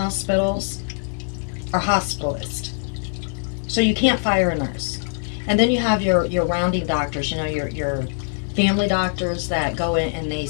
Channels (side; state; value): right; silent; digital silence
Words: are hospitalists. So you can't fire a nurse. And then you have your rounding doctors, your family doctors that go in and